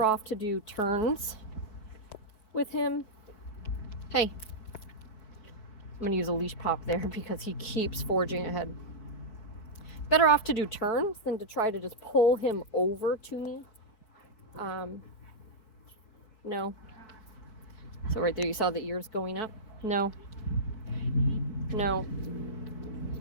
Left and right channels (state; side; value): late; right; 4.6 ms